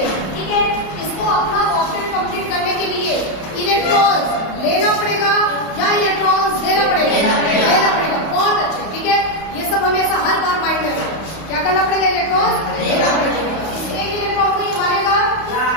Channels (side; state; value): right; late; 31 ms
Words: ठीक है। इसको अपना ऑक्टेट कंप्लीट करने के लिए इलेक्ट्रॉन लेना पड़ेगा या इलेक्ट्रॉन देना पड़ेगा? लेना पड़ेगा, बहुत अच्छे, ठीक है। ये सब हमेशा हर बार माइंड में रखो, क्या करना पड़ेगा? इलेक्ट्रॉन लेना पड़ेगा। इस एक इलेक्ट्रॉन को ये मारेगा